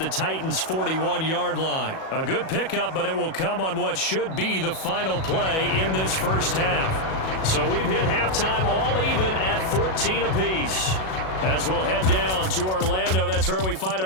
Titans' 41-yard line. A good pickup, but it will come on what should be the final play in this first half. So we've hit halftime all even at 14 apiece. As we'll head down to Orlando, that's where we find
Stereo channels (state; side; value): late; right; 37 ms